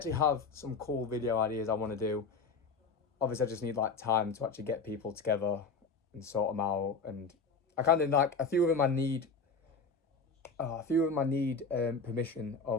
have some cool video ideas I want to do. Obviously I just need like time to actually get people together and sort them out. And I kind of like, a few of them I need permission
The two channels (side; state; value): right; quieter; 4.3 dB